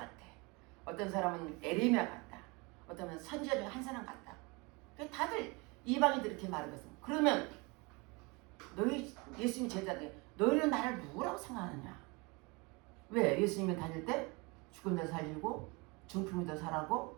어떤 사람은 에레미야 같다. 어떤 사람은 선지자 중에 한 사람 같다. 다들 이방인들이 이렇게 말하거든. 그러면 너희 예수님 제자들 너희는 나를 누구라고 생각하느냐? 왜? 예수님이 다닐 때 죽은 데 살리고 중풍이도 살아고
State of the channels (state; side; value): quieter; left; 27.6 dB